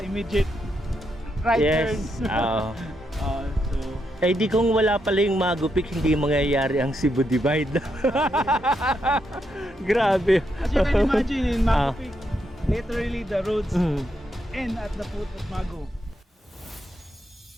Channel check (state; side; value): normal; both; correlation 0.81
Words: immediate right Yes. turn. So Eh di kung wala pala yung Magupik, hindi mangyayari ang Cebu Divide. Grabe. as you can imagine in Magupik, literally the roads end at the foot of Magu.